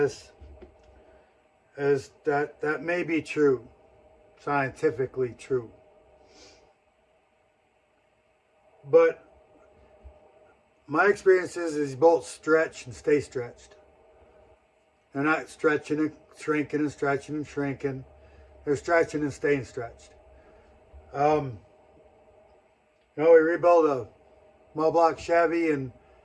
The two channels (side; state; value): both; identical; correlation 1.00